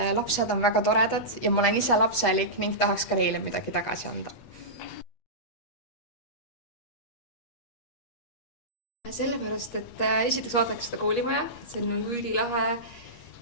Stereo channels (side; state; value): right; late; 8.3 ms